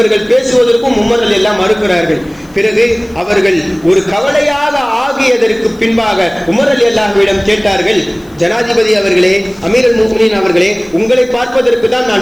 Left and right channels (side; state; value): left; noise; hiss, 29 dB below the sound